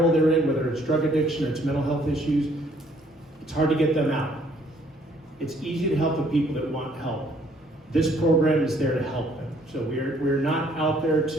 they're in, whether it's drug addiction or it's mental health issues, it's hard to get them out. It's easy to help the people that want help. This program is there to help them. So we're not out there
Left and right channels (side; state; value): both; normal; correlation 0.63